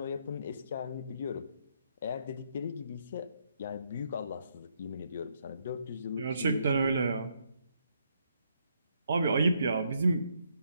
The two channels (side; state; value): both; inverted; correlation -0.74